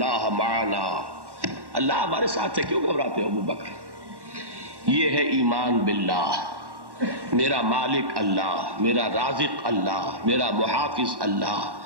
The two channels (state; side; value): late; left; 1.1 ms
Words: معنا، اللہ ہمارے ساتھ ہے، کیوں گھبراتے ہو ابو بکر؟ یہ ہے ایمان باللہ، میرا مالک اللہ، میرا رازق اللہ، میرا محافظ اللہ،